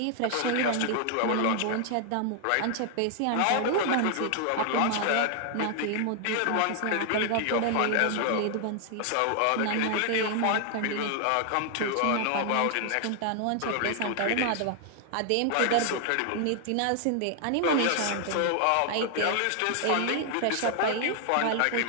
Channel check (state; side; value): different; both; correlation 0.00